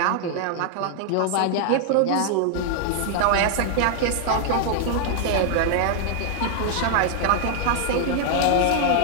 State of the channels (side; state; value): both; different; correlation 0.00